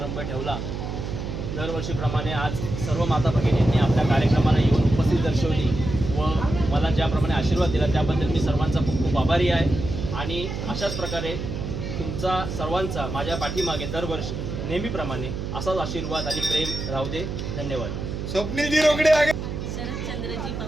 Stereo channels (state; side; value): noise; right; hum, 5 dB below the sound